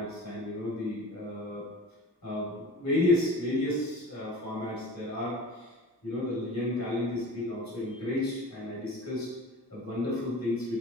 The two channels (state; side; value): normal; both; correlation 0.37